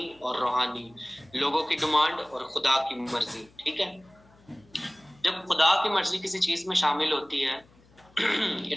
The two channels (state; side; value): noise; left; hum, 29 dB below the sound